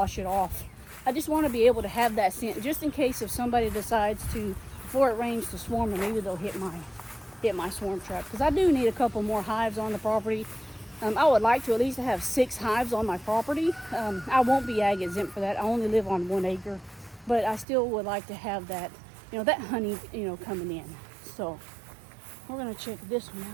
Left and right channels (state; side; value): drops out; left; at 17.7 s